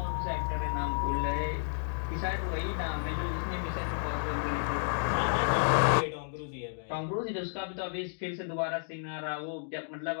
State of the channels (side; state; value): right; silent; digital silence